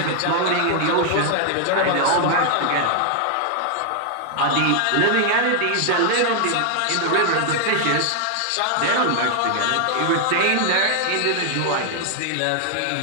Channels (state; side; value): different; both; correlation 0.00